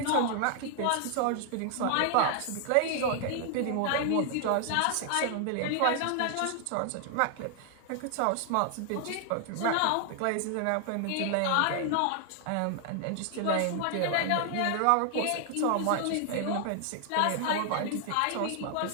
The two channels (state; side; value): different; both; correlation 0.00